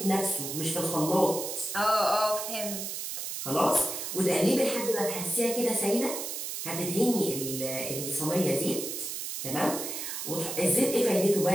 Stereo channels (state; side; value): noise; right; hiss, 5 dB below the sound